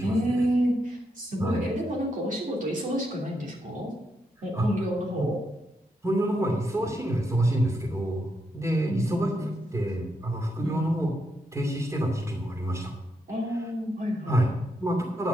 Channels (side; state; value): both; normal; correlation 0.81